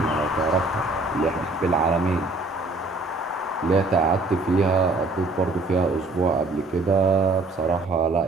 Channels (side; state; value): left; quieter; 3.2 dB